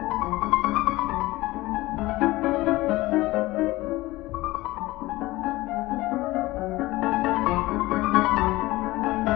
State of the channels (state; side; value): quieter; right; 19.1 dB